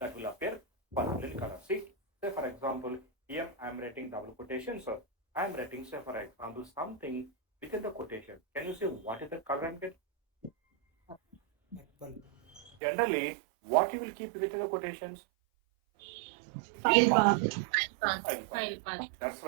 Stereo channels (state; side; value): drops out; left; at 12.7 s